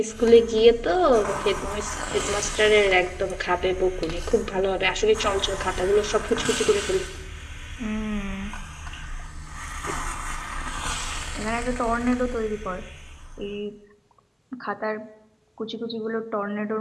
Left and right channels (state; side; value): identical; both; correlation 1.00